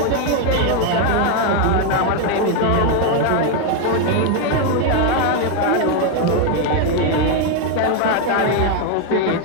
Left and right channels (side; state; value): both; different; correlation 0.01